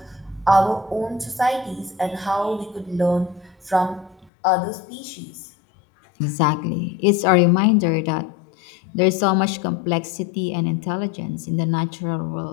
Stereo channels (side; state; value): right; drops out; at 4.3 s